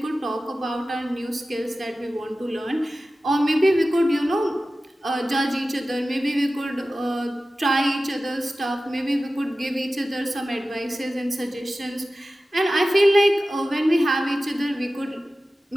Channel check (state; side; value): normal; both; correlation 0.95